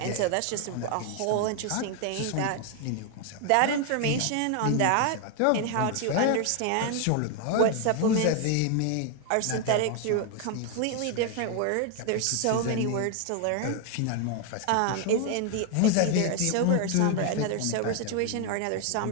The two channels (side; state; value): both; different; correlation 0.01